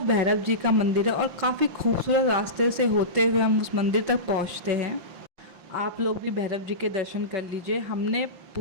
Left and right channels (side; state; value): left; late; 5.8 ms